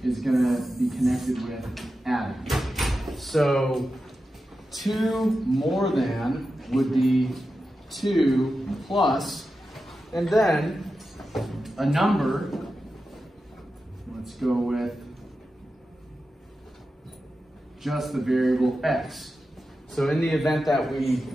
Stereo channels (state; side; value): normal; both; correlation 0.91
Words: is going to be connected with adding. So 2 more than would be 2 plus, and then a number, let's go with just the variable x. So in the event that we